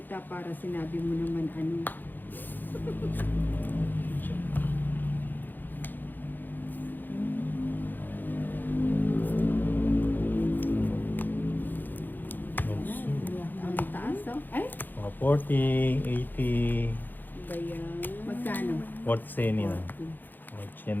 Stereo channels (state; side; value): late; right; 0.089 ms